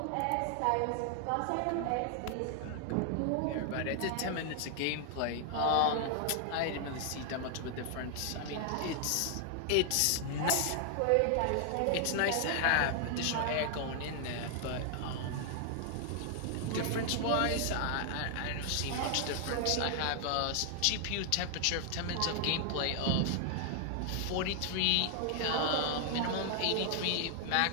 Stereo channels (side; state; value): both; different; correlation 0.00